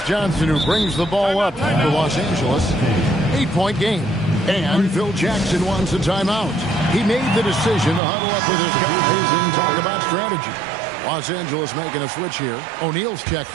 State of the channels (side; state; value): left; drops out; at 8.0 s